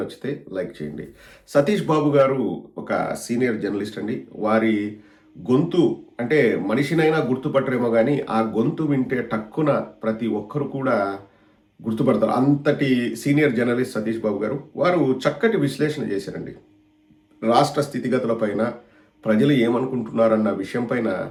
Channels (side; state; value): both; identical; correlation 1.00